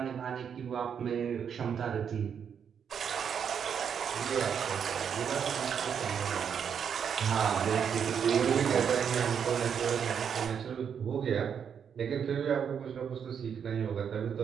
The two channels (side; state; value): left; quieter; 7.5 dB